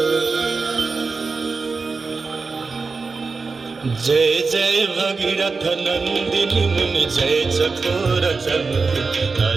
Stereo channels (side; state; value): left; quieter; 4.4 dB